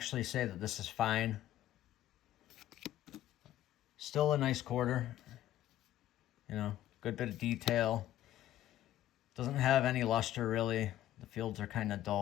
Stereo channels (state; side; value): quieter; right; 12.9 dB